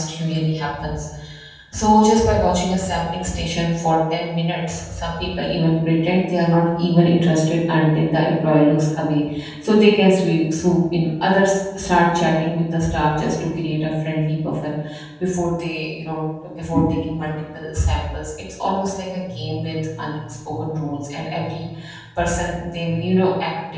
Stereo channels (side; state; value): both; identical; correlation 1.00